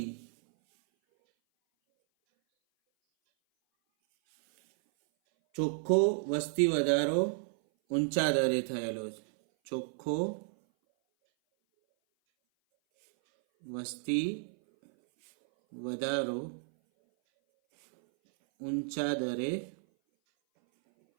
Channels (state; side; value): silent; left; 57 dB below the other